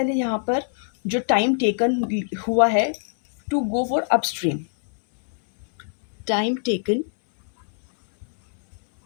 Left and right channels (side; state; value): right; silent; 62 dB below the other